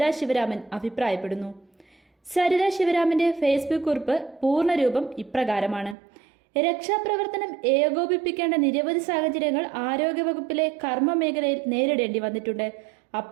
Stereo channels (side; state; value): left; drops out; at 6.0 s